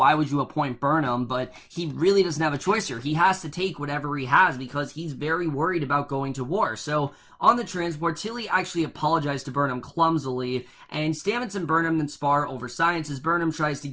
would you appoint Burnham? But he really doesn't have a choice here. He has to take whatever he has because he's very worried about going to war. So on the transport, Tilly actually apologized to Burnham clumsily, and Stamets and Burnham then spar over science as Burnham tries to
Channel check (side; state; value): both; identical; correlation 1.00